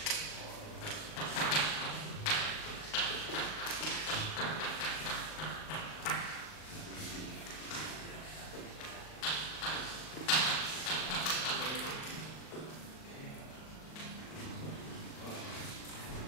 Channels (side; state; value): right; late; 38 ms